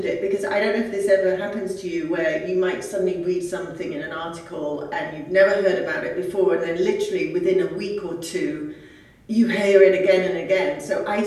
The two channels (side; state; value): both; identical; correlation 1.00